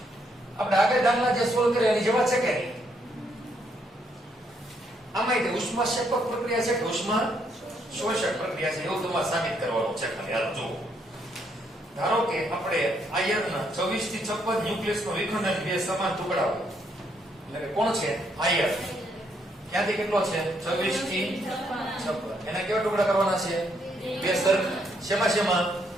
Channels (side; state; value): both; normal; correlation 0.73